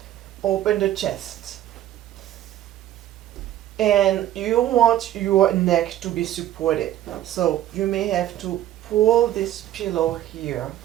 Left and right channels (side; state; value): left; quieter; 12.8 dB